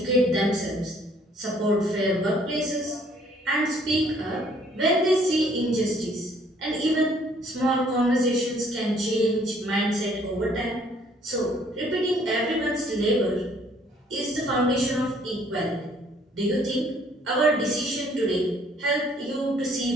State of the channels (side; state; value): both; normal; correlation 0.61